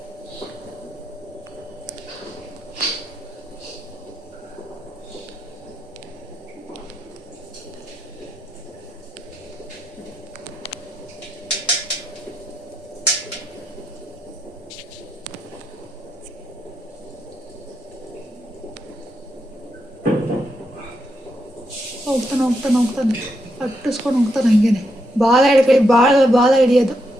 ಹೋಗ್ತಾನೆ ಅಟ್ಟಿಸ್ಕೊಂಡು ಹೋಗ್ತಾನೆ ಹಂಗೇನೆ. ಬಾಲ ಹಿಡಿಯೋದು.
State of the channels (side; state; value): both; normal; correlation 0.82